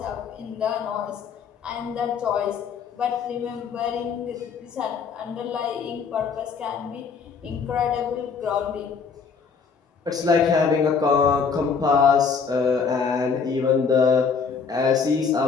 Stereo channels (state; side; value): quieter; right; 5.7 dB